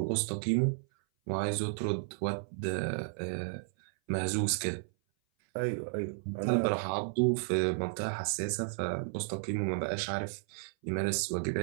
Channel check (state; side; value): silent; left; 56 dB below the other